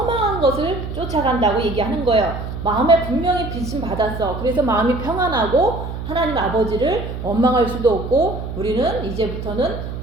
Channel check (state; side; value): noise; right; hum, 7 dB below the sound